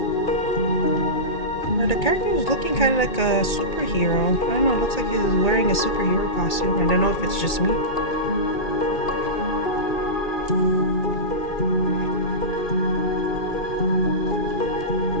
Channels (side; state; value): right; late; 2.4 ms